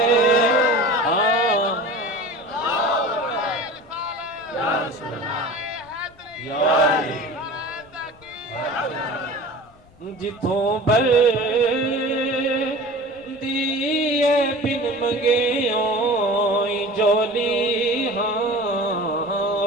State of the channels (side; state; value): left; noise; rumble, 27 dB below the sound